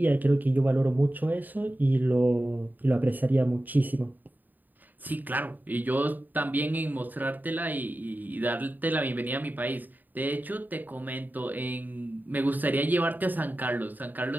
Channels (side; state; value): left; late; 0.088 ms